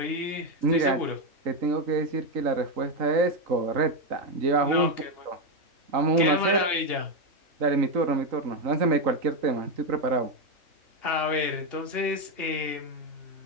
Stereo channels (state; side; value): late; left; 2.8 ms